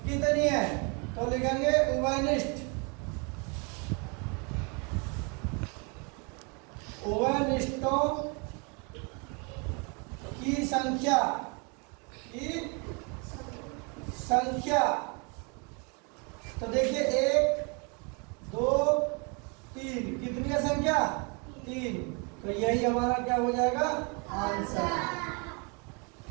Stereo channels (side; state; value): left; quieter; 33.1 dB